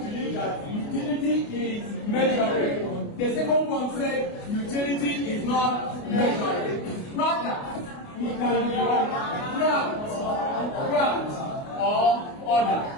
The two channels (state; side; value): late; right; 29 ms